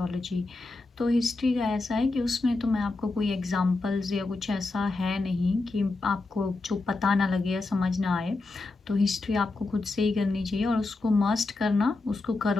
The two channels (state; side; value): quieter; right; 3.4 dB